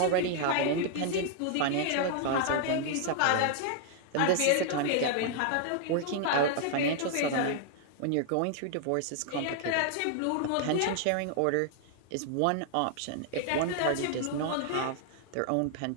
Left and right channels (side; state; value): both; different; correlation 0.00